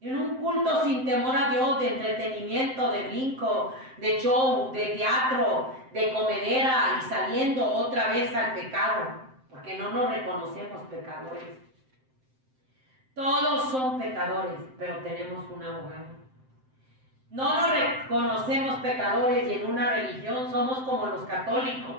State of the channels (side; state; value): left; late; 7.7 ms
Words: En un culto sin temor a Dios, de entretenimiento, de brinco, de show, de teatro, de comedera y saliendo otra vez al pecado. Porque no nos reconocemos pecadores. Todos son pecadores, pero tenemos un abogado. No nos reconocemos pecadores y en una religión somos como los